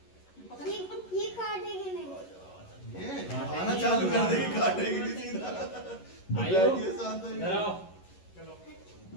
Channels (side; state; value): right; late; 11 ms